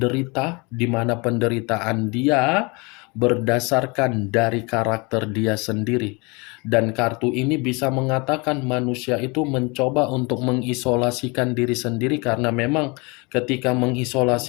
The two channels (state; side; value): quieter; right; 28.5 dB